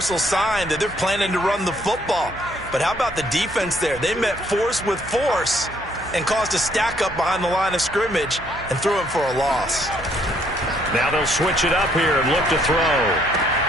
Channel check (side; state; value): right; noise; hum, 17 dB below the sound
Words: sign that they're planning to run the football. But how about the defense there? They met force with force and caused a stack up behind the line of scrimmage and threw him for a loss. Now they'll switch it up here and look to throw.